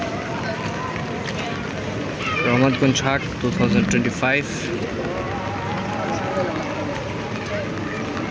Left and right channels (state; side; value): identical; both; correlation 1.00